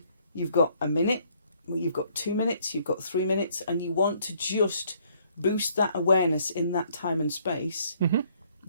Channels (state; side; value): inverted; both; correlation -0.65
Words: you've got a minute, you've got 2 minutes, you've got 3 minutes, and you want to just boost that awareness in that time and space, mm-hmm.